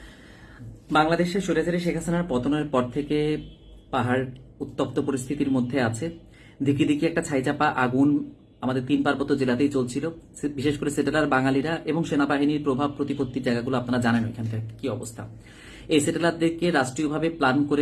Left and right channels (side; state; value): both; identical; correlation 1.00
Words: বাংলাদেশের স্বৈরাচারী শেখ হাসিনার পতনের পর থেকে পাহাড় উত্তপ্ত পরিস্থিতির মধ্যে আছে। দিকে দিকে একটা ছাইচাপা আগুন আমাদের 3 পার্বত্য জেলাতেই চলছিল। বিশেষ করে সেটেলার বাঙালিরা এবং সেনাবাহিনীর প্রভাব প্রতিপত্তির জায়গাগুলো আপনারা জানেন ওইখানকার কি অবস্থা। এই সেটেলারদেরকে রাষ্ট্রীয়ভাবে প্ল্যান